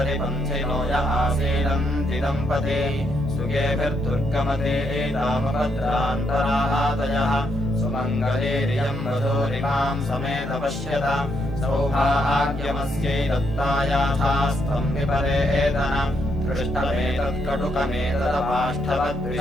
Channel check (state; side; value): normal; both; correlation 0.77